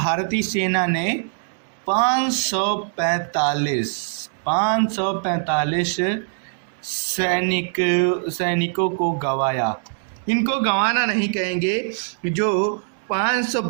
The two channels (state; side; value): silent; left; 62 dB below the other